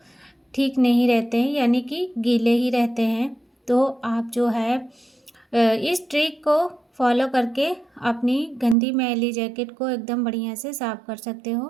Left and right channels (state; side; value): drops out; left; at 8.8 s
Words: ठीक नहीं रहते हैं, यानी कि गीले ही रहते हैं। तो आप जो है इस ट्रिक को फॉलो करके अपनी गंदी मैली जैकेट को एकदम बढ़िया से साफ़ कर सकते हो।